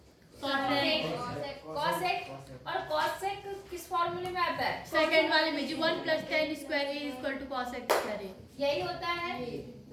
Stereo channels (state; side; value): identical; both; correlation 1.00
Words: कॉसेक। और कॉसेक किस फॉर्मूले में आता है? सेकंड वाले में जी 1 + tan square a = cosec square a। यही होता है,